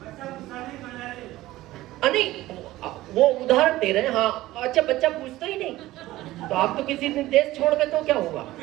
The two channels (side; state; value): left; quieter; 16.7 dB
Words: नहीं, वो उदाहरण दे रहे हैं। हाँ, अच्छा, बच्चा पूछता ही नहीं तो आप तो किसी दिन देश छोड़ गए तो क्या हुआ?